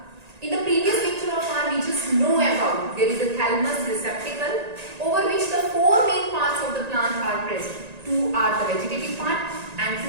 In the previous lecture of ours, we just know about there is a thalamus receptacle over which the four main parts of the plant are present. Two are the vegetative part and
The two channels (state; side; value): late; left; 1.9 ms